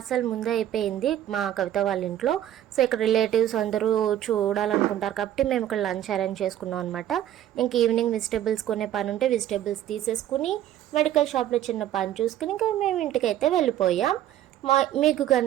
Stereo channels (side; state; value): left; quieter; 12.0 dB